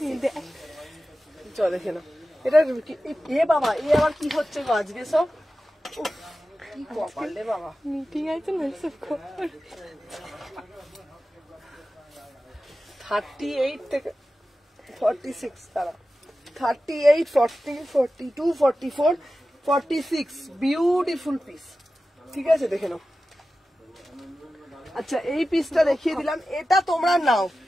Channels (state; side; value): normal; both; correlation 0.94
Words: চলো দেখে নাও এটা। এ বাবা এ আবার কি হচ্ছে গো আজকে সব, কি কপাল রে বাবা। মিটিং আছে না সব খবর। 38 থেকে 46, তারা 38, 40, 42, 44, 46 বিউটিফুল পিস, ঠিক আছে দেখে নাও। আচ্ছা এই পিসটা দেখিয়ে দিলাম, এটা তোমরা নাও।